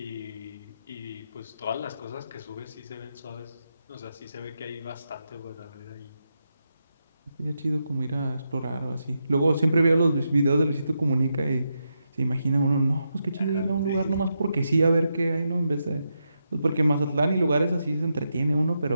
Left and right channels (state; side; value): inverted; both; correlation -0.85